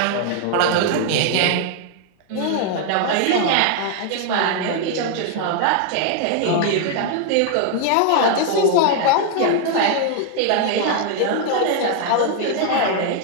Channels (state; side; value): different; both; correlation 0.00